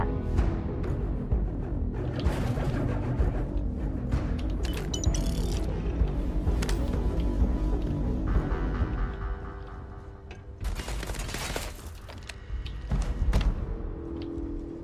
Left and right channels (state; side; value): identical; both; correlation 1.00